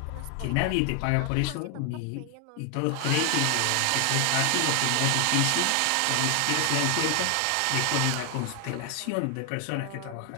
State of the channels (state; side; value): different; both; correlation 0.00